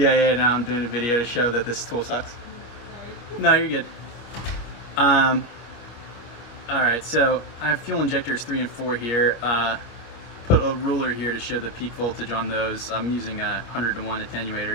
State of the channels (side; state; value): right; late; 26 ms